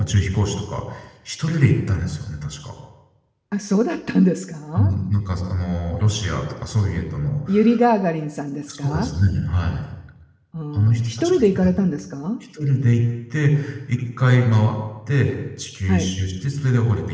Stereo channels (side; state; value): both; identical; correlation 1.00